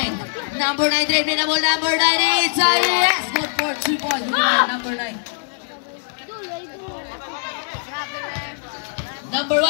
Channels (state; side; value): silent; right; digital silence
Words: 9, dribbling na ball, number 9. Itza. Yes, good for 2 points. Number 9. Number